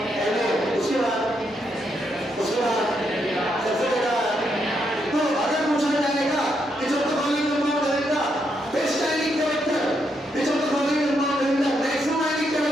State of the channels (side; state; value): both; normal; correlation 0.79